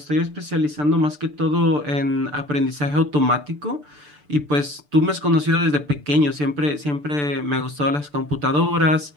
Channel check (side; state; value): left; late; 6.8 ms